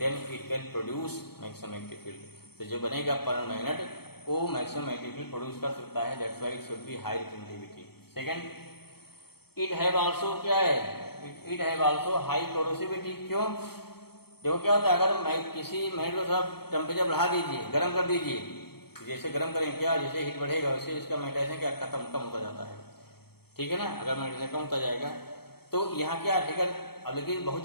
it can produce maximum magnetic field, तो जो बनेगा परमानेंट मैग्नेट वो मैक्सिमम मैग्नेटिक फील्ड प्रोड्यूस कर सकता है, that's why it should be high retentivity. Second, it have also क्या है, it have also high corrosivity, क्यों, देखो क्या होता है, अगर किसी मैग्नेट को थोड़ा टेम्परेचर बढ़ा दीजिए, गर्म कर दीजिए, जैसे गर्म करेंगे क्या, जैसे हीट बढ़ेगा वैसे इसका मैग्नेटाइजेशन क्या खत्म कम होता जाता है, ठीक है ना। अगर मैग्नेटाइजेशन कम होता जाएगा तो यहाँ क्या ठीक है, अब लेकिन बहुत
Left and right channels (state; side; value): late; right; 0.96 ms